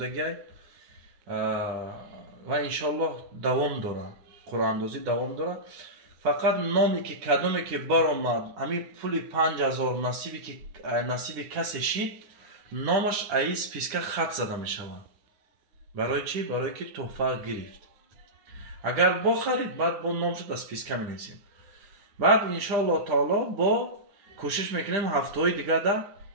و انشالله دوام داره، قرعه اندازی دوام داره. فقط نامی که کدومی که برآمد همین پول 5000 نصیب کسی شید نامش ای سپیسکا خط زده می شود. برای چی؟ برای که تحفه گرفت. اگر با خرید بعد با نامش در سپیسکا می نویسیم. بعد انشالله تعالی با کوشش میکنیم هفته های دیگه ده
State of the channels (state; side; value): late; left; 10 ms